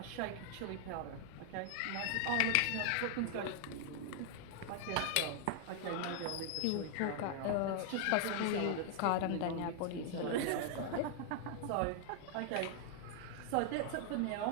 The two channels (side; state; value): both; different; correlation 0.00